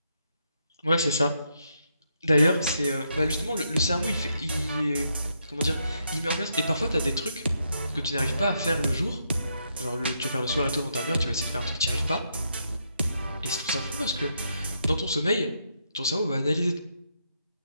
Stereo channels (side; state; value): both; inverted; correlation -0.79